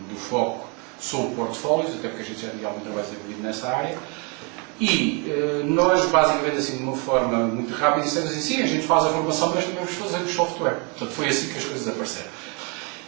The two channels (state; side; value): quieter; left; 33.6 dB